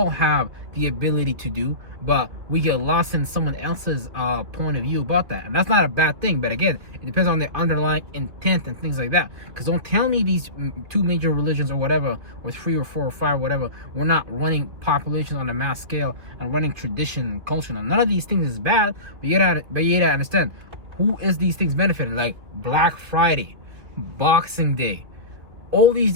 have the ability to do, but we get lost in someone else's point of view about that. And that's not a bad thing, but again, it depends on the underlying intent and things like that. Because don't tell me these two major religions or whatever, or three or four or five, whatever, we're not running populations on a mass scale and running tradition and culture. Now, none of these things is bad, but you gotta understand who is these things benefiting. Like Black Friday, Boxing Day, all these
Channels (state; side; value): late; left; 2.8 ms